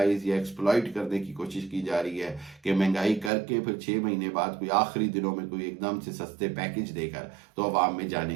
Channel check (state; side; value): drops out; left; at 3.3 s